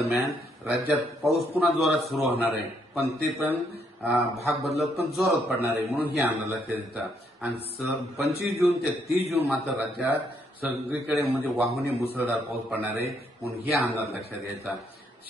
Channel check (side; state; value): both; normal; correlation 0.73